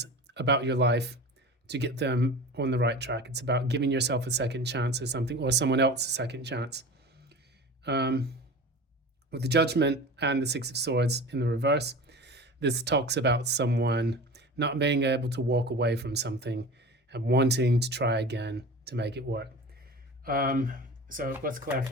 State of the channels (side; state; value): both; normal; correlation 0.34